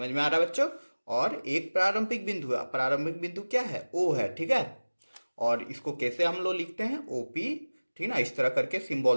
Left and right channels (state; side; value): inverted; both; correlation -1.00